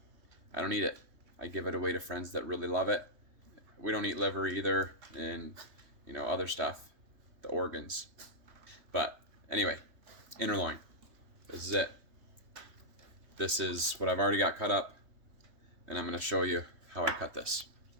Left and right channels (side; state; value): left; late; 3.2 ms